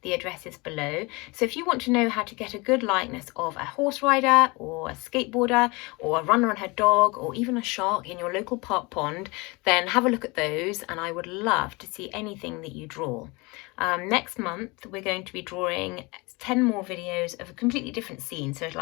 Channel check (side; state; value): right; quieter; 25.9 dB